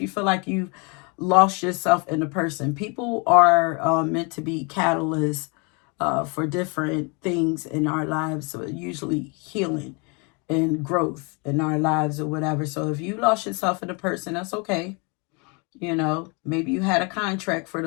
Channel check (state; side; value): quieter; right; 32.2 dB